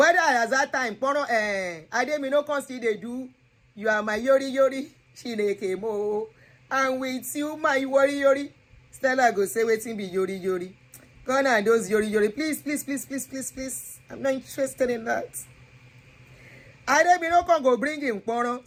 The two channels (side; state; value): both; identical; correlation 1.00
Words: at that time kporon Ademi no come still dey do you are my yori Chineke mo, and with you my yori. Stella go say wetin be yori. Gone are those yori. Please. I'm not interested in that. Ademi no come go bring him kporon.